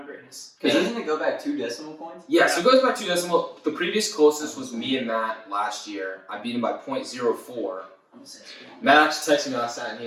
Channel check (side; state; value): both; identical; correlation 1.00